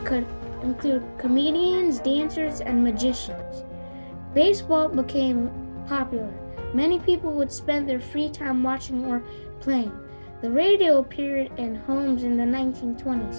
could include comedians, dancers, and magicians. Baseball became popular. Many people would spend their free time watching or playing. The radio appeared in homes in the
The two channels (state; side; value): inverted; both; correlation -1.00